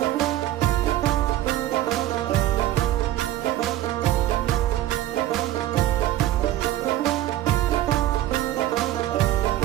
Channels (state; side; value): quieter; left; 13.9 dB